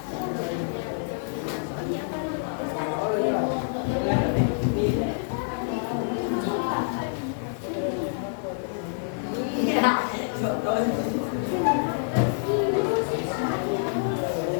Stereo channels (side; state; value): right; silent; digital silence